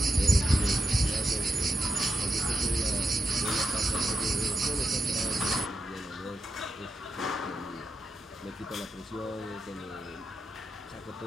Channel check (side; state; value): both; normal; correlation 0.87